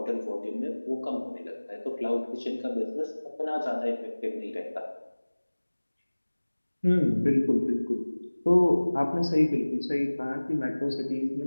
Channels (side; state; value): both; inverted; correlation -1.00